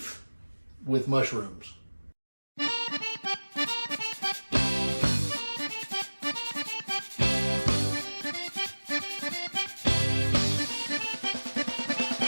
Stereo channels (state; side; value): inverted; both; correlation -1.00